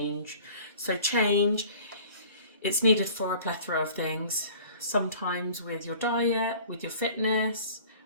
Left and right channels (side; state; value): both; inverted; correlation -0.47